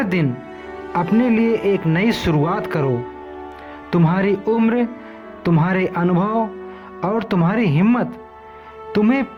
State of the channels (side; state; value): both; identical; correlation 1.00